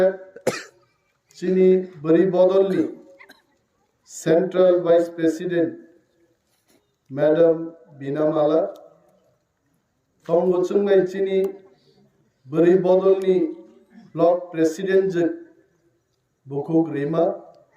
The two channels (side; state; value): both; identical; correlation 1.00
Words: চিনি বরি বদলনি সেন্ট্রাল ভাইস প্রেসিডেন্ট ম্যাডাম বিনামালা তং বলছেন ভাই চিনি বরি বদলনি ব্লক প্রেসিডেন্ট যে বুকুক রিমা